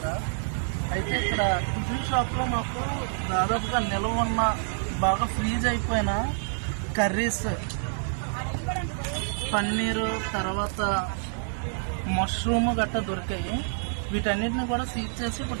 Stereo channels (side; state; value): left; silent; digital silence